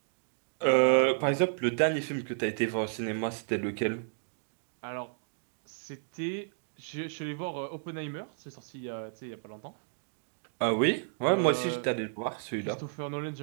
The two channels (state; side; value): silent; left; digital silence